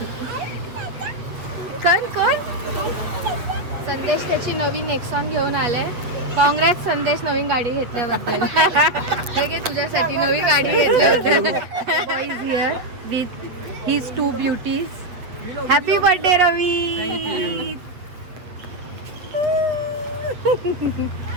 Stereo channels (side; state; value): left; late; 8.1 ms